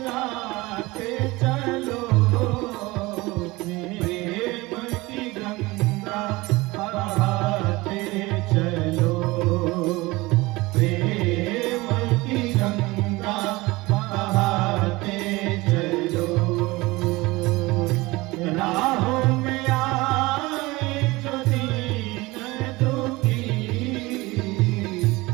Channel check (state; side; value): quieter; left; 21.6 dB